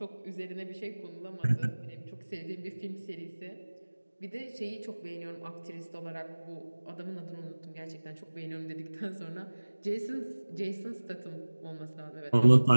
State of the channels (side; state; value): both; inverted; correlation -1.00